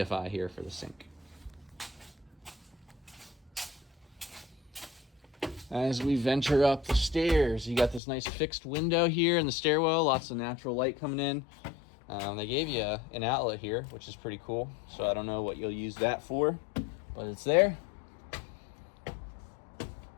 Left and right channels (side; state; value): right; drops out; at 8.0 s